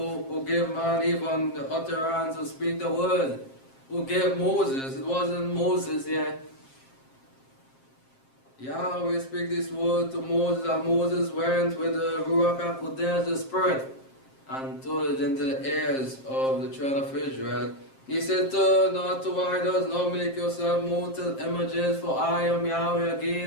give man even the utterance to speak the word, who gave Moses. It wasn't Moses here. Yahweh speak this word to Moses, and Moses went with the Ruach HaKodesh, the Spirit, and told it into the ears of the children of Israel. He said, turn not to idols, nor make yourself mortal images, for I am Yahweh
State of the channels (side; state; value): right; late; 7.5 ms